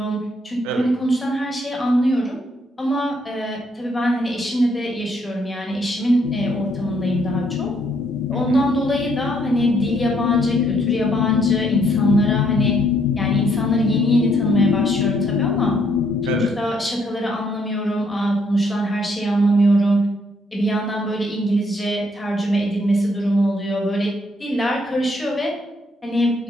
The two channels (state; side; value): normal; both; correlation 0.70